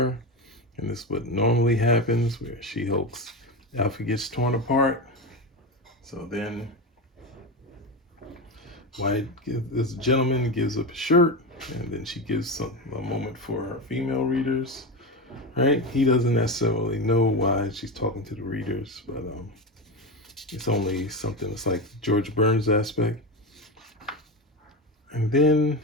And this is what normally happens, where She-Hulk's outfit gets torn apart. So then Wyatt, this gentleman gives up a shirt, and then she gives a moment for her female readers, right? He doesn't necessarily know why she's talking to the readers, but it's only something that's like George Burns aspect. And then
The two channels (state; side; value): normal; both; correlation 0.18